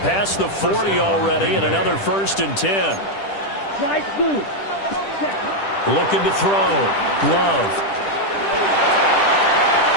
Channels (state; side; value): late; right; 10 ms